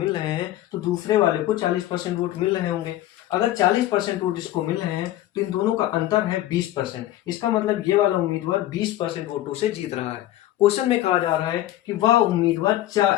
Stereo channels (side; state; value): right; quieter; 14.3 dB